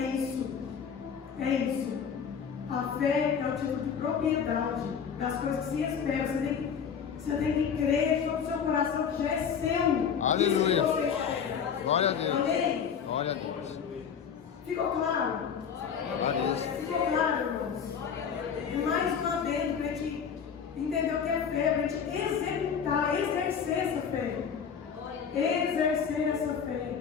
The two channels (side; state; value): right; quieter; 7.1 dB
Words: É isso. A fé é o título de propriedade das coisas que se esperam. Você tem que crer de todo o seu coração que já é seu. Aleluia. Isso que você espera. Glória a Deus. Amém? Glória a Deus. Ficou claro? Ficou claro, irmãos? E mais uma vez, para a gente entender o que é fé, para a gente executar, exercer essa fé. Exercer essa fé.